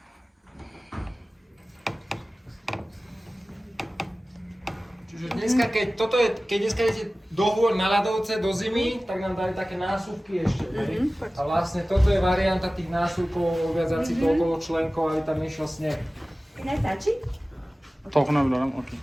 Čiže dneska, keď dneska idete do hôr na ľadovce, do zimy, tak nám dali také násuvky ešte. A vlastne toto je varianta tých násuvkov, viazať si to okolo členkov, aby tam išiel sneh. Nestačí? Toľko nevydarám, ok.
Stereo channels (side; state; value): both; normal; correlation 0.97